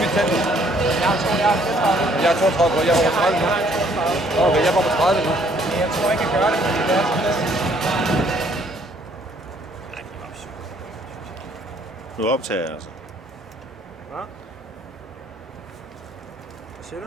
mit tand. Jeg er 32, jeg var på 30 nu. Okay, jeg var på 30 nu. Jeg tror ikke, jeg gør det, fordi det er sådan lidt. Nu optager jeg altså. Hvad? Hvad siger du?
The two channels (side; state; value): both; normal; correlation 0.63